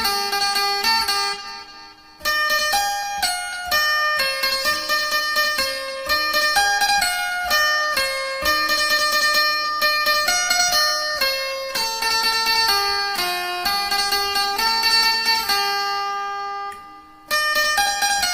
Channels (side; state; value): both; identical; correlation 1.00